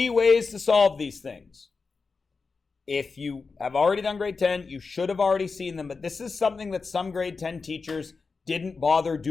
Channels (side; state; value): right; quieter; 4.6 dB